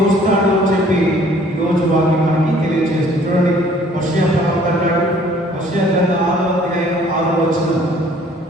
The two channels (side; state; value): both; normal; correlation 0.57